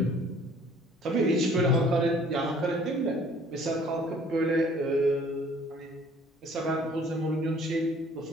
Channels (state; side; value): normal; both; correlation 0.55